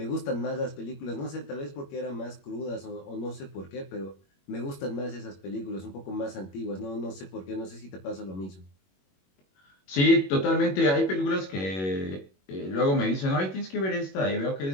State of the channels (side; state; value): right; late; 21 ms